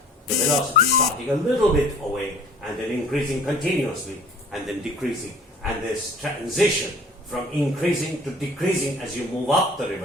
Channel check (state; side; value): normal; both; correlation 0.49